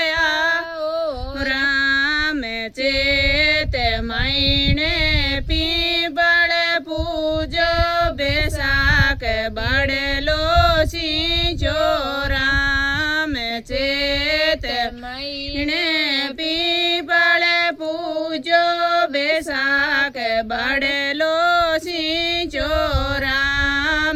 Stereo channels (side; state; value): both; identical; correlation 1.00